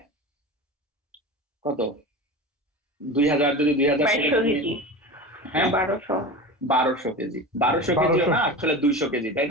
কত 2000, যদি 2000 হ্যাঁ 1200 কেজি, 1200 কেজি না আসলে 200 কেজি, তাই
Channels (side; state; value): both; normal; correlation 0.29